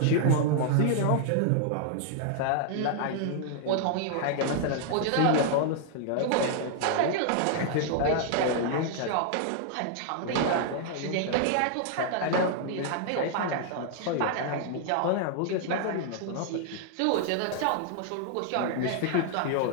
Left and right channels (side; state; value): both; different; correlation -0.01